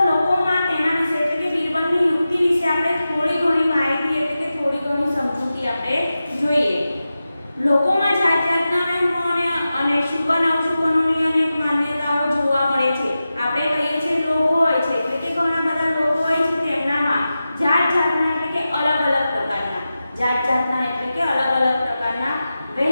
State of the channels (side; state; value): both; inverted; correlation -0.93